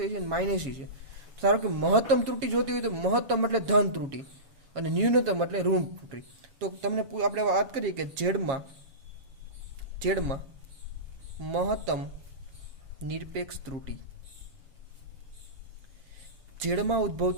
એ છે, માઇનસ એ છે. ધારો કે મહત્તમ ત્રુટી જોતી હોય તો મહત્તમ એટલે ધન ત્રુટી અને ન્યૂનતમ એટલે ઋણ ત્રુટી. તો તમને આપણે વાત કરીએ કે ઝેડમાં મહત્તમ નિરપેક્ષ ત્રુટી, ઝેડમાં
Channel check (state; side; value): late; left; 7.3 ms